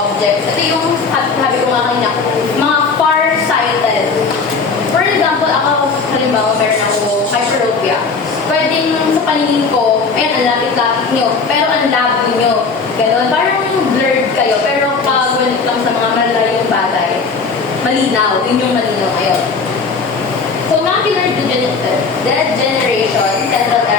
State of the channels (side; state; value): right; quieter; 4.7 dB